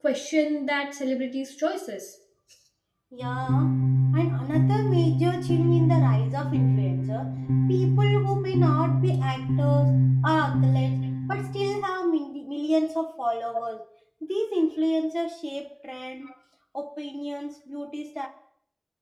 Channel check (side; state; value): both; identical; correlation 1.00